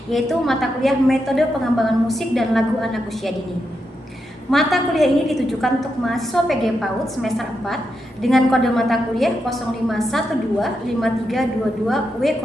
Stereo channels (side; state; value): both; normal; correlation 0.85